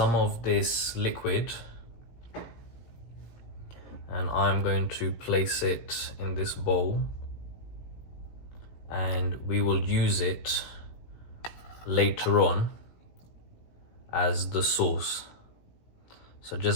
of this liquid, and I'm going to place it in this bowl, and we will use it later on as the sauce. So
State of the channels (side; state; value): right; late; 17 ms